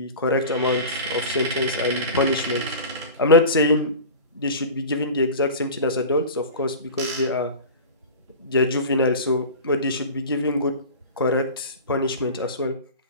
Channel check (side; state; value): both; inverted; correlation -0.34